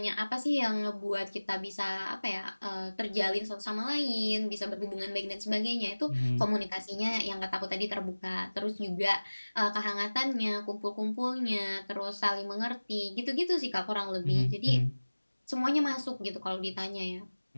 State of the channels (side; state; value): both; inverted; correlation -1.00